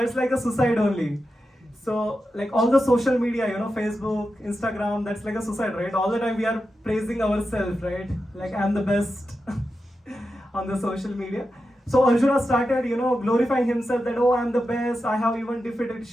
like a suicide only. So like all the social media, Facebook, Instagram, that's like a suicide, right? All the time we are praising ourselves, right? Like I'm the best on the social media. So Arjuna started, glorifying himself that, oh, I'm the best. I have even defeated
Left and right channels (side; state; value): both; normal; correlation 0.90